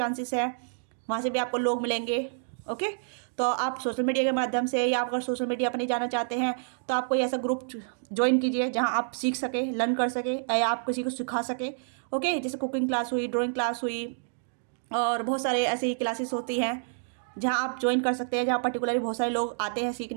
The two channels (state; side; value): silent; left; digital silence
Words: है, वहाँ से भी आपको लोग मिलेंगे। ओके। तो आप सोशल मीडिया के माध्यम से, या अगर सोशल मीडिया पर नहीं जाना चाहते हैं तो आप कोई ऐसा ग्रुप ज्वाइन कीजिए जहां आप सीख सके, लर्न कर सके, या आप किसी को सिखा सके। ओके, जैसे कुकिंग क्लास हुई, ड्राइंग क्लास हुई, और बहुत सारे ऐसे ही क्लासेस होती हैं जहां आप ज्वाइन कर सकते हैं, जहां पर्टिकुलरली बहुत सारे लोग आते हैं